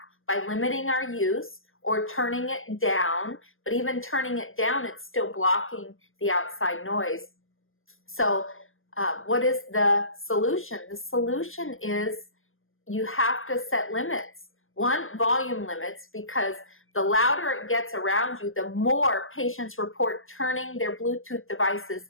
by limiting our use or turning it down. But even turning it down, it's still blocking the outside noise. So what is the solution? The solution is you have to set limits. One, volume limits, because the louder it gets around you, the more patients report turning their Bluetooth devices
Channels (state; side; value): late; right; 0.60 ms